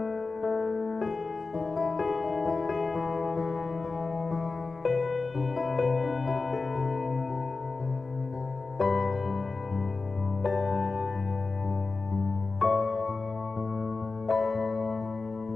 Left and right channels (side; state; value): right; quieter; 3.9 dB